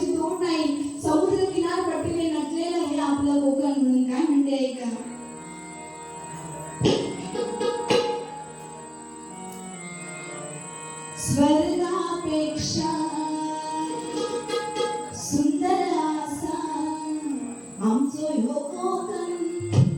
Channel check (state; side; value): identical; both; correlation 1.00